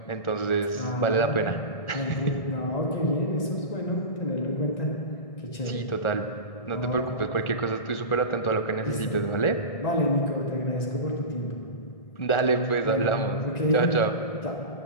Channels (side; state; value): right; late; 1.4 ms